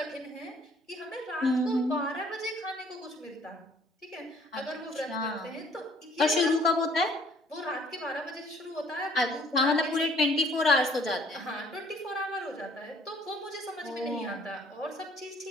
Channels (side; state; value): both; normal; correlation 0.59